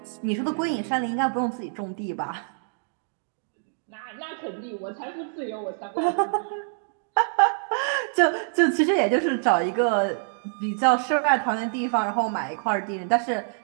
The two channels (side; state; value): left; silent; digital silence